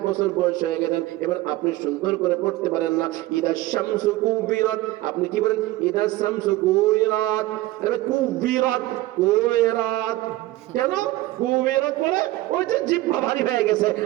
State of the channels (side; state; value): left; quieter; 17.6 dB